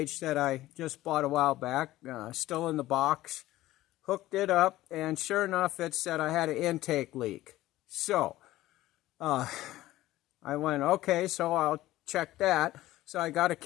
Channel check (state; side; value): quieter; right; 16.0 dB